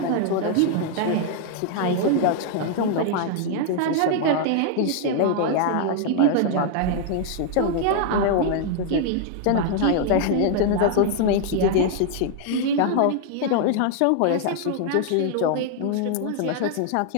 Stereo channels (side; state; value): both; different; correlation 0.00